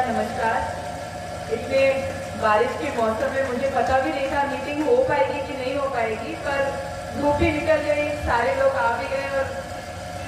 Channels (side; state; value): both; identical; correlation 1.00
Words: नमस्कार। इतने बारिश के मौसम में मुझे पता भी नहीं था मीटिंग हो पाएगी कि नहीं हो पाएगी, पर धूप भी निकल गई, सारे लोग आ भी गए और